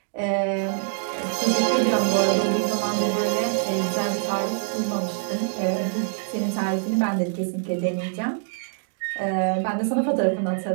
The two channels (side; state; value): left; silent; digital silence